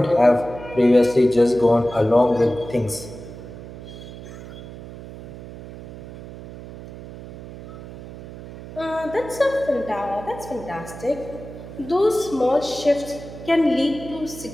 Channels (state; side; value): noise; right; hum, 14 dB below the sound